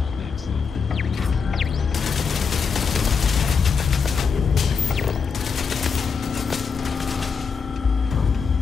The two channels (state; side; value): quieter; right; 5.6 dB